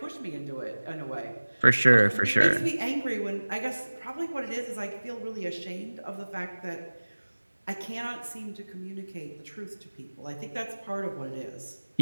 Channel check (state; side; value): inverted; both; correlation -1.00